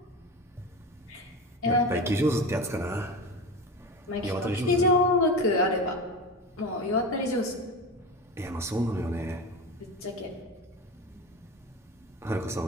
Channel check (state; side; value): normal; both; correlation 0.26